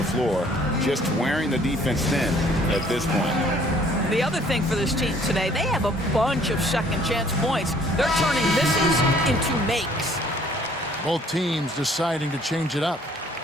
floor, just wearing the defense thin at this point. The other thing for this team today, they have a bunch of second chance points. They're turning misses into makes. Both teams deciding to change it up.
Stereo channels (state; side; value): normal; both; correlation 0.59